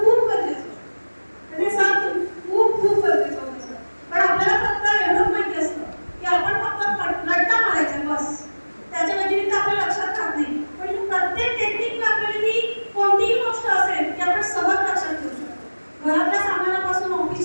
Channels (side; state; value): both; inverted; correlation -1.00